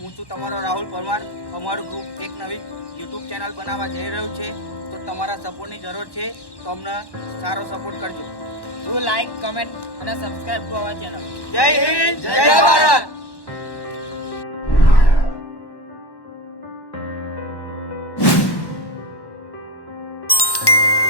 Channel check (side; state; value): right; late; 1.1 ms